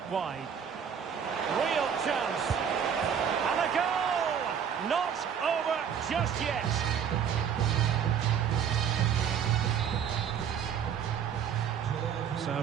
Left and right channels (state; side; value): quieter; left; 7.9 dB